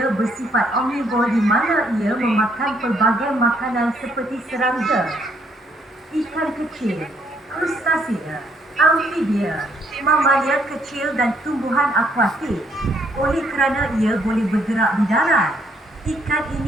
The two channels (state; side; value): normal; both; correlation 0.69